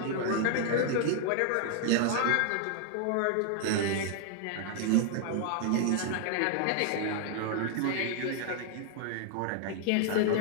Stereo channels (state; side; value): different; both; correlation 0.00